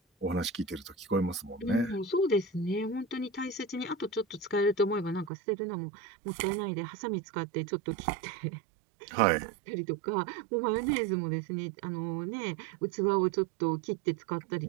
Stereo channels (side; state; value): left; drops out; at 5.3 s